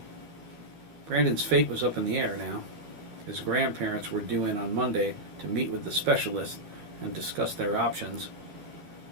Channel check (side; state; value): left; late; 13 ms